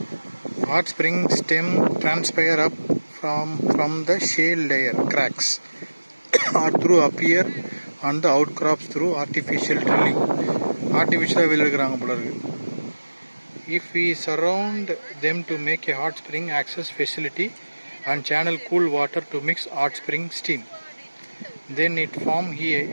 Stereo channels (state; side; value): inverted; both; correlation -1.00